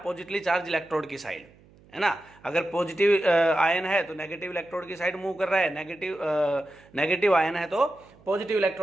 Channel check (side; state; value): right; noise; hum, 27 dB below the sound